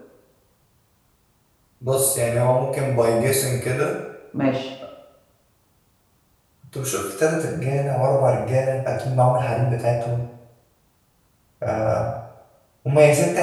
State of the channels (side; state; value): both; identical; correlation 1.00